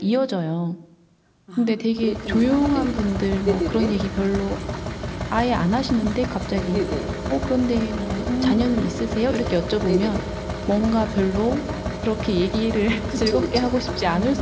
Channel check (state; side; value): identical; both; correlation 1.00